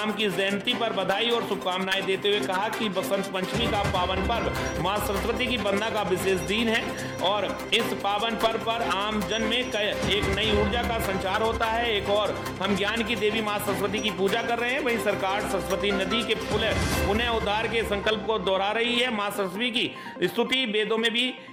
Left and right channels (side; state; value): both; identical; correlation 1.00